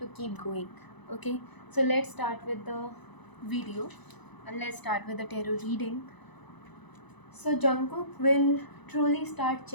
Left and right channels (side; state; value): right; late; 1.0 ms